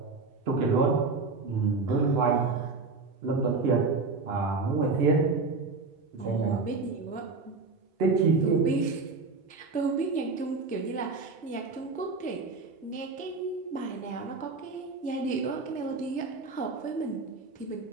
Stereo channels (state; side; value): quieter; left; 4.1 dB